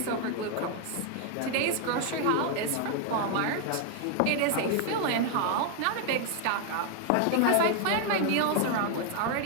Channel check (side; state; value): both; different; correlation 0.00